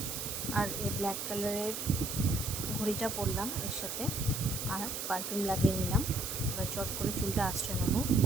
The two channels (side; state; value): right; noise; hiss, 4 dB below the sound